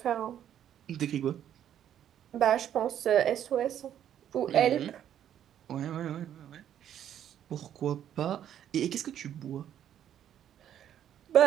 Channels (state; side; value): quieter; left; 10.3 dB